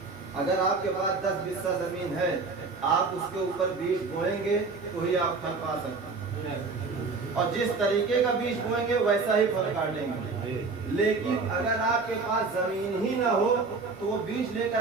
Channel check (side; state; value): left; quieter; 4.2 dB